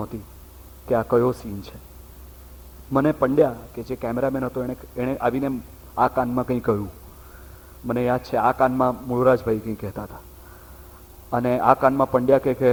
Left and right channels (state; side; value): identical; both; correlation 1.00